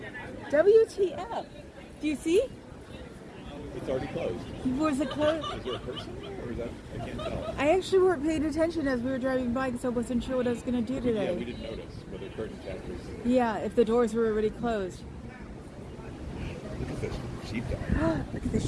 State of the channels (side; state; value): both; identical; correlation 1.00